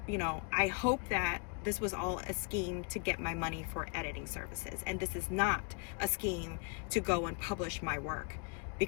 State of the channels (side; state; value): right; quieter; 34.4 dB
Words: you know, I hope that this was all a scheme to get my money for editing services. And this is not a scheme to go and publish my work,